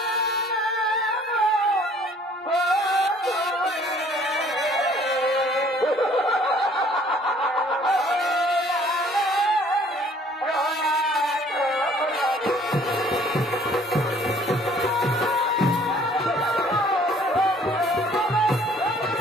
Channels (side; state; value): both; normal; correlation 0.57